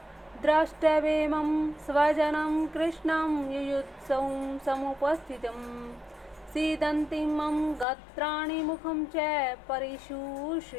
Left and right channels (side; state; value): right; drops out; at 7.9 s